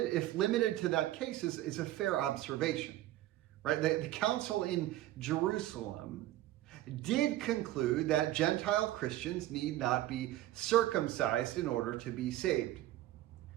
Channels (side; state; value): left; quieter; 14.8 dB